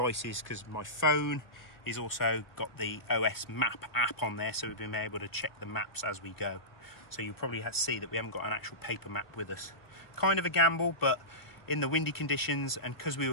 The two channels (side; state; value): right; late; 1.3 ms